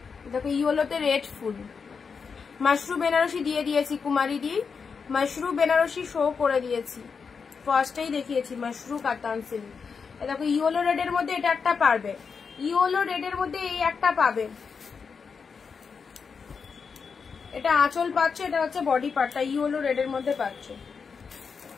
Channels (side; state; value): right; quieter; 5.7 dB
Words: দেখো ইয়েলোতে রেড ফুল, মাশরু বেনারসি দিয়ে দিয়েছি, কুমারী দি মাশরু বেনারসি শো করে দিয়েছি, ফার্স্টেই দেখিয়েছি মাশরু কাতান সিল্ক। দেখো ইয়েলো রেডের মধ্যে এটা একটা পারবে, ইয়েলো রেডের মধ্যে এই একটা পাবে। এটা আঁচল পাচ্ছ, এটা হচ্ছে বডি পার্টটা ইয়েলো রেডের মধ্যে পাচ্ছ।